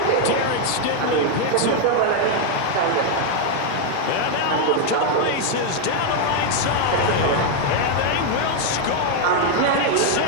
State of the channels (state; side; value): different; both; correlation 0.01